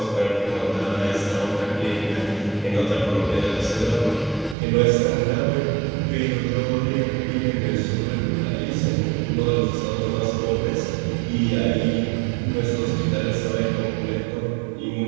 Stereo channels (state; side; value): drops out; left; at 4.5 s